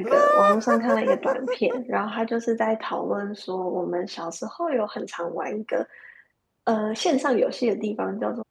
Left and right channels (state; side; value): identical; both; correlation 1.00